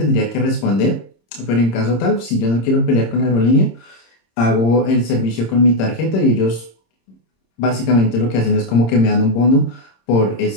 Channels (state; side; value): late; right; 26 ms